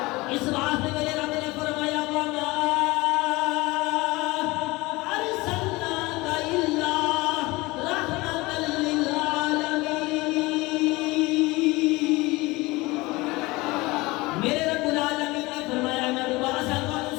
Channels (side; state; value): right; quieter; 22.1 dB